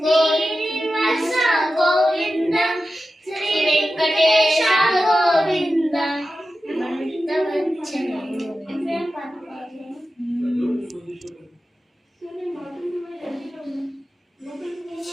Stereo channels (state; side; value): normal; both; correlation 0.92